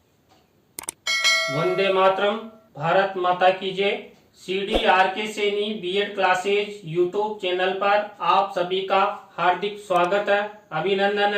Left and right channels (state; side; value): identical; both; correlation 1.00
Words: वंदे मातरम, भारत माता की जय। CDRK Saini B Ed classes YouTube channel पर आप सभी का हार्दिक स्वागत है, अभिनंदन